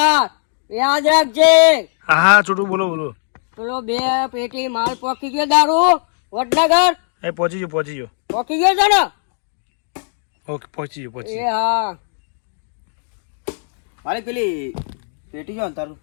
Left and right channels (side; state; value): right; silent; 67 dB below the other